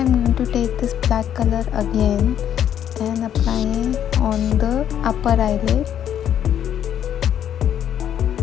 going to take this black color again and apply on the upper eyelid.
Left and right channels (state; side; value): quieter; right; 9.8 dB